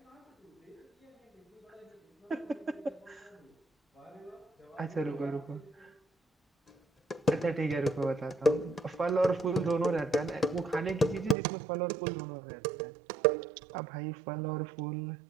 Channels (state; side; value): drops out; left; at 11.4 s